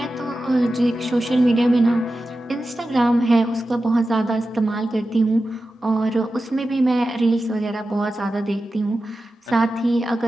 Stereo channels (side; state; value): both; normal; correlation 0.93